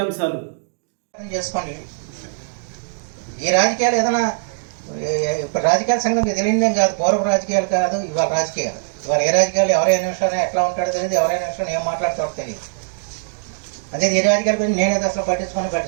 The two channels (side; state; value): left; silent; digital silence